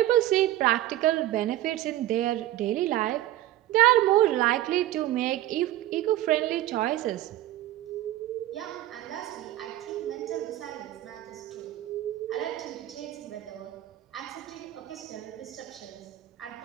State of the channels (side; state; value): left; quieter; 14.5 dB